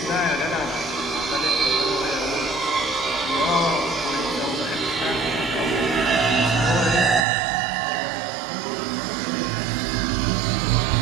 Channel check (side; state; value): left; drops out; at 7.2 s